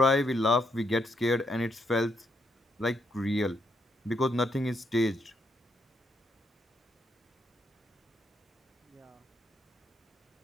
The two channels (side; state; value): both; normal; correlation 0.77